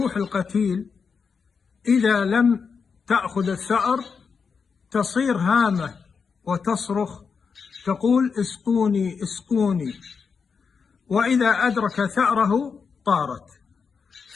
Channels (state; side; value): quieter; right; 5.7 dB